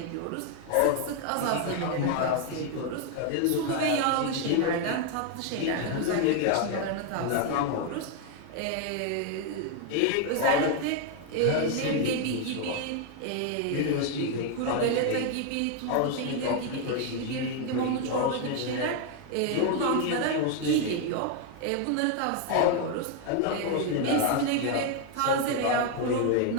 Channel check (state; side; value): different; both; correlation 0.01